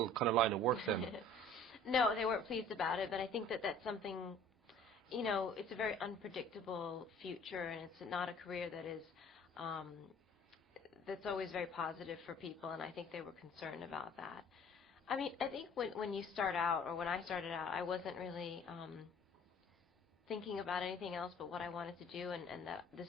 kind of line of work then? No, they weren't pleased about it, but I think that that's something, it's a very unpredictable future, and it's not a career that is, that's always very positive for people, and I think they were concerned about that. I mean, I think when you start out, or when I started out, I wasn't really thinking about anything else but what I wanted to do, and that this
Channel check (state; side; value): normal; both; correlation 0.51